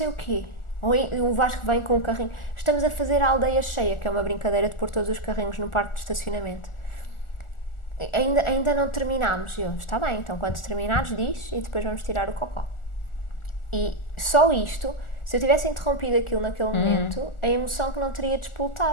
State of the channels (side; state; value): right; late; 1.4 ms